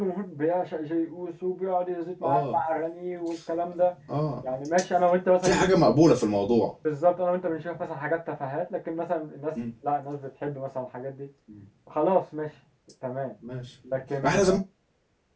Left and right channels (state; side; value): identical; both; correlation 1.00